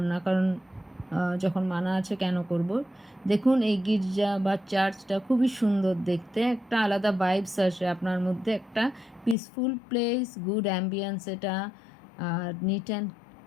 না, কারণ যখন মানা আছে কেন করব। দেখুন এই গির্জা বা চার্চটা খুবই সুন্দর দেখতে, একটা আলাদা ভাইবস আসে আপনার মধ্যে, একটা পিসফুল প্লেস, গুড অ্যাম্বিয়েন্স এটা, আর নিট অ্যান্ড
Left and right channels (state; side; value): drops out; right; at 9.3 s